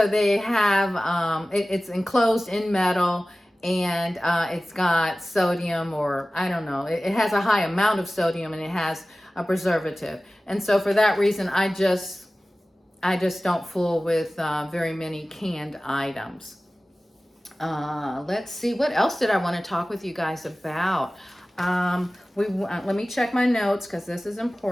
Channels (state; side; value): normal; both; correlation 0.97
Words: they have it's enclosed in metal, and it's got sodium, or I don't know. It has a high amount of sodium, and it has a preservative. And so for that reason, I just don't fool with very many canned items. Let's see, what else did I want to talk with you guys about? Let me check my notes, because this is